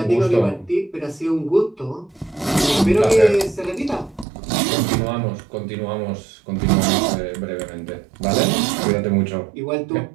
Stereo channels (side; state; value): left; drops out; at 4.2 s